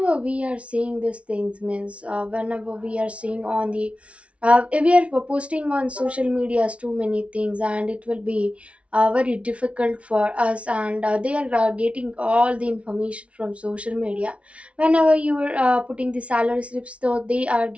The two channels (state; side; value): late; left; 0.062 ms